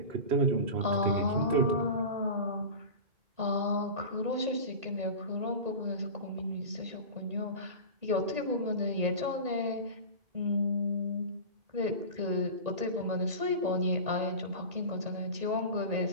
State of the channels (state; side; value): late; left; 1.8 ms